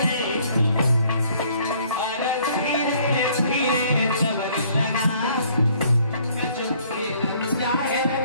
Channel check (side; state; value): both; inverted; correlation -0.61